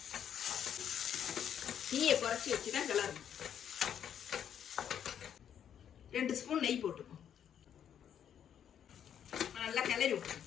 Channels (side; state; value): right; quieter; 9.1 dB